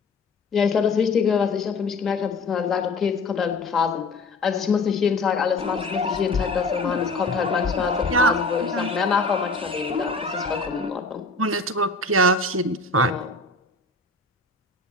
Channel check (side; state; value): right; quieter; 3.3 dB